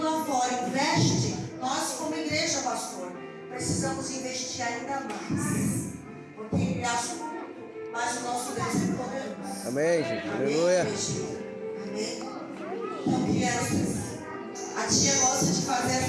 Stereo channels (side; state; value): both; identical; correlation 1.00